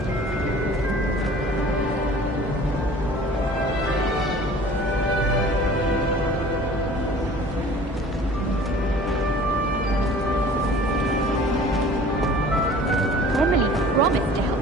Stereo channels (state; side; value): normal; both; correlation 0.47